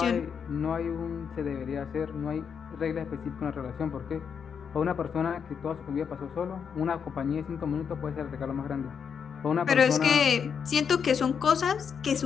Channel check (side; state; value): right; quieter; 6.9 dB